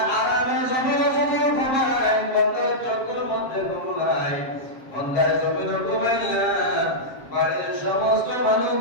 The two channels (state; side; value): late; right; 7.4 ms